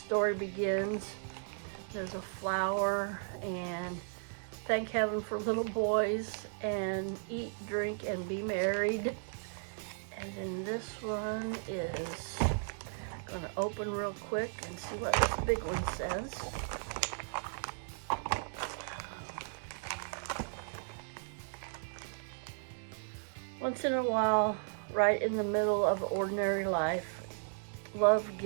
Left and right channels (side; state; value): left; silent; digital silence